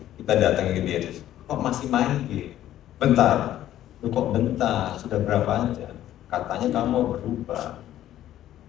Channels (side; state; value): right; quieter; 12.6 dB